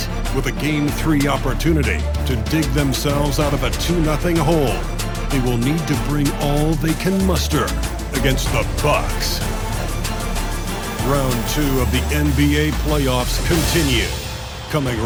with a Game 3 opportunity to dig themselves out of a 2-0 hole. They will need to bring all they can muster against the Bucks. Round 2 of the NBA playoffs continue, coming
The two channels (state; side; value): identical; both; correlation 1.00